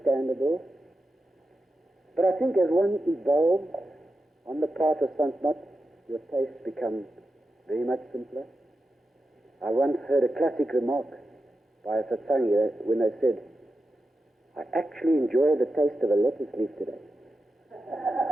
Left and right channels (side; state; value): both; normal; correlation 0.90